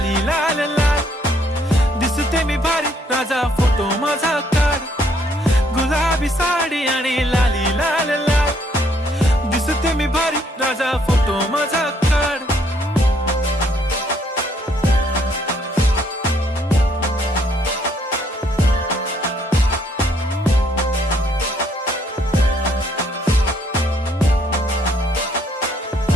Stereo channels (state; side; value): normal; both; correlation 0.68